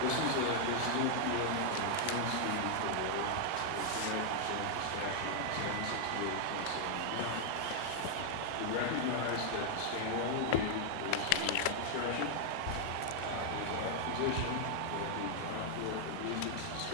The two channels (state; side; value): different; both; correlation -0.01